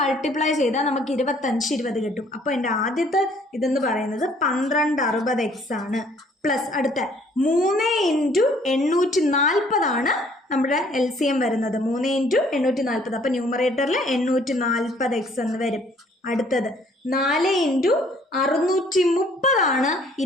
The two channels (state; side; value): normal; both; correlation 0.60